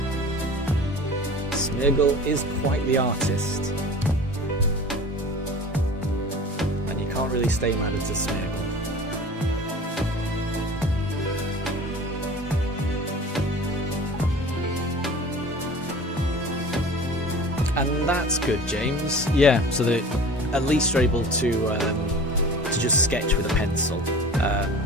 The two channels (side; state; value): both; normal; correlation 0.40